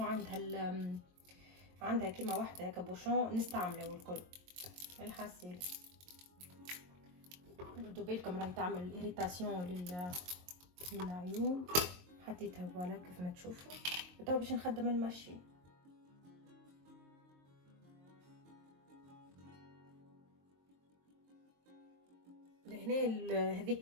عندها كيما واحده هكا بوشون نستعمله الكل الحاسيل. ردوا بالكم راهي تعمل اريتاسيون للعيون. حطيتها فوالا كيف ما تشوفوا. وتو باش نخدم الماشين. لهنا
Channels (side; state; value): left; late; 22 ms